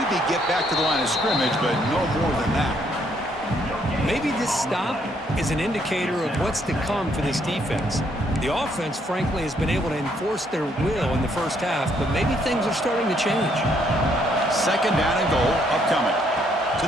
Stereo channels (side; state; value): both; normal; correlation 0.70